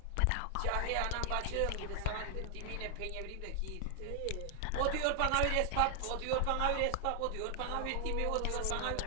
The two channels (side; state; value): both; different; correlation 0.00